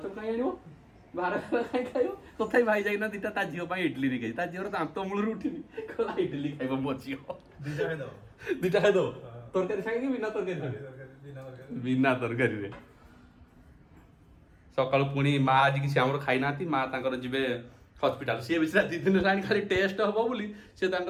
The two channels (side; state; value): both; identical; correlation 1.00